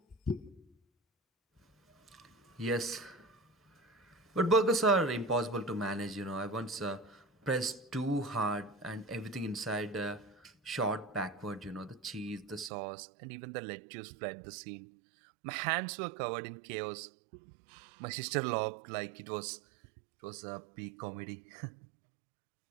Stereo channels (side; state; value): left; drops out; at 12.7 s